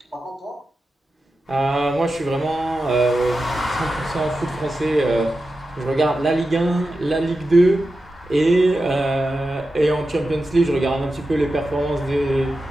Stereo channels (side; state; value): both; normal; correlation 0.91